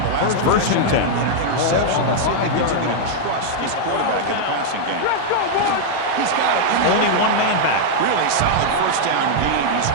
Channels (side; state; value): both; different; correlation -0.01